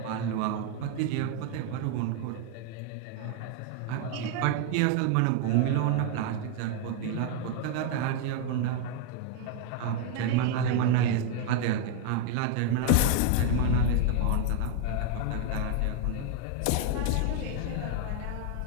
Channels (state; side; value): different; both; correlation 0.00